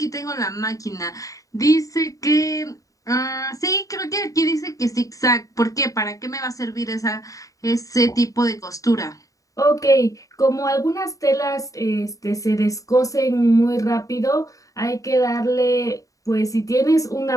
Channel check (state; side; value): late; right; 0.16 ms